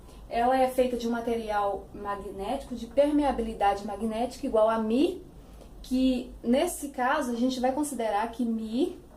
ela é feita de um material magnético de permeabilidade magnética igual a μ, que nesse caso a gente vai considerar que μ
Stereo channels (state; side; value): identical; both; correlation 1.00